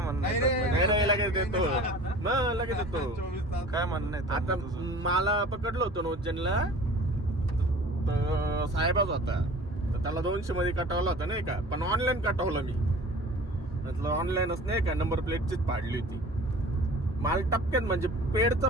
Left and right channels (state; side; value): normal; both; correlation 0.43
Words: म्हणणं आहे? लगेच देतो. लगेच देतो. काय म्हणणं आहे आता तुझं? मला पकडलं होतं नोजनला, तर साहेबच होता. तर त्याला 200 मध्ये कटवला होता नाही का, पण ऑनलाईन कटवलं मी. म्हटलं ऑनलाईनच नाही का, नंबर प्लेटचीच पाडली होती. मला टपक्यात म्हणजे पेडचा